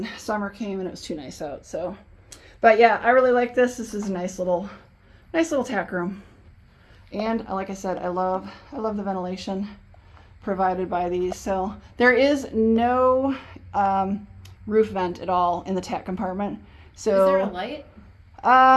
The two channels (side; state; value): both; identical; correlation 1.00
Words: summer came and it was too nice out. So, but yeah, I really like this. This is a nice little tack room. And like I said, I love the ventilation provided by these. So there is no roof vent at all in the tack compartment. So is there a light?